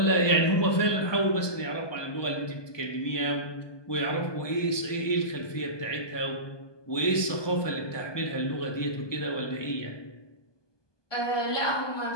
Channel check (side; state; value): right; late; 1.2 ms